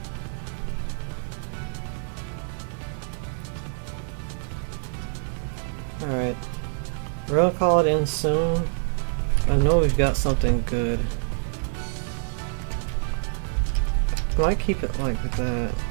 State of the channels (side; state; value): left; silent; 61 dB below the other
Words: Alright. We're gonna call it in soon. I know we've got something good. I might keep it like that.